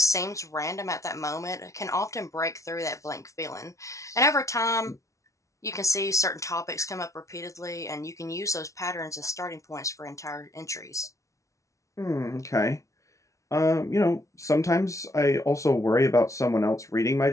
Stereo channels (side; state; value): right; late; 0.15 ms